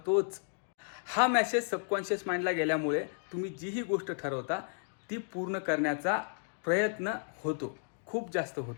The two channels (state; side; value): silent; right; digital silence